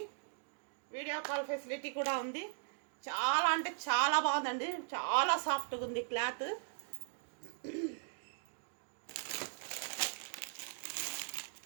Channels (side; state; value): left; silent; digital silence